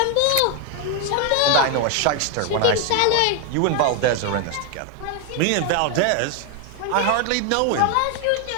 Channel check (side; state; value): both; different; correlation 0.01